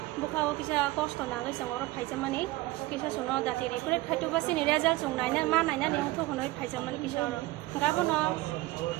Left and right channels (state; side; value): quieter; left; 19.1 dB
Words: bukawo kisa cost nangai song oro phaijamani kisa suno dati recruit khaitu basini result song naina ma naina ni ongtho honoi phaijamani kisa oro gabono